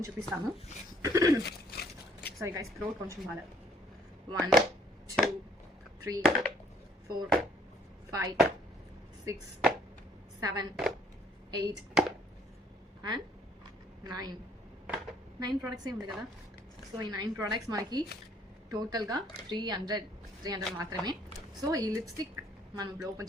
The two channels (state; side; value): normal; both; correlation 0.62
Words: చూపిస్తాను. సారీ గైస్, థ్రోట్ కొంచెం బాగా. 1 2 3 4 5 6 7 8 అండ్ 9 ప్రోడక్ట్స్ ఉంది కదా. సో ఈ 9 ప్రోడక్ట్స్ మనకి టోటల్గా 300 మాత్రమే. సో ఈ లిప్స్టిక్ మనం ఇప్పుడు